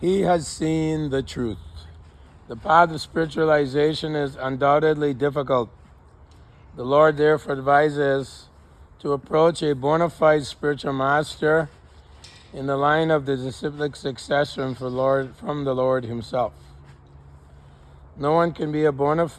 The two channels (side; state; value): both; identical; correlation 1.00